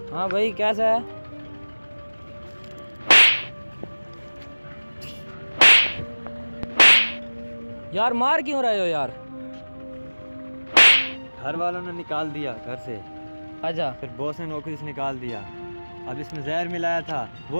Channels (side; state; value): both; inverted; correlation -1.00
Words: हाँ भाई कैसा है? यार मार क्यों रहे हो यार? घर वालों ने निकाल दिया घर से, अच्छा। फिर बॉस ने नौकरी से निकाल दिया। अब इसमें जहर मिलाया था,